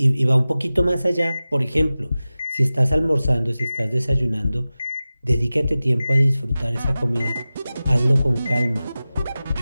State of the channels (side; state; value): both; inverted; correlation -0.96